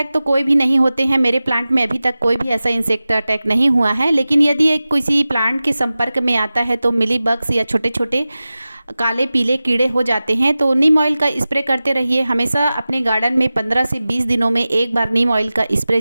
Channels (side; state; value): both; inverted; correlation -0.96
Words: तो कोई भी नहीं होते हैं। मेरे प्लांट में अभी तक कोई भी ऐसा इंसेक्ट अटैक नहीं हुआ है। लेकिन यदि एक किसी प्लांट के संपर्क में आता है तो मिली बग्स या छोटे छोटे काले पीले कीड़े हो जाते हैं। तो नीम ऑयल का स्प्रे करते रहिए। हमेशा अपने गार्डन में 15 से 20 दिनों में एक बार नीम ऑयल का स्प्रे